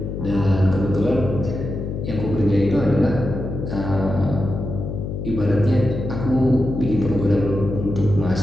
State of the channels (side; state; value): left; noise; hum, 5 dB below the sound